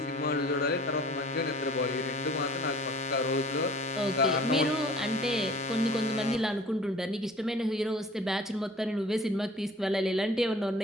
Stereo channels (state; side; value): normal; both; correlation 0.48